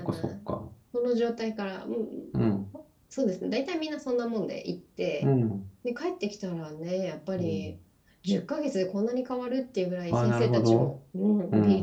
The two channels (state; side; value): identical; both; correlation 1.00